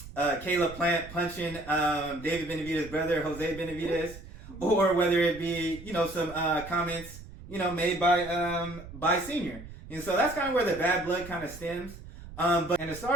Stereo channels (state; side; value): noise; right; rumble, 15 dB below the sound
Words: Plant punching David Benavidez's brother Jose Benavidez, or whether it be some comments made by Senior. And so that's kind of where the bad blood kind of stems. But to